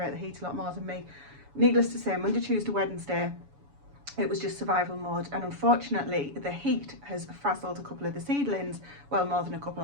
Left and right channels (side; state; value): left; late; 7.1 ms